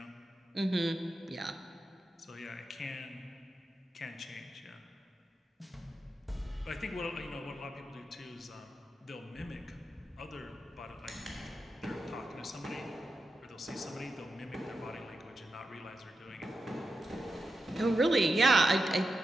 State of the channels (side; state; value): both; normal; correlation 0.88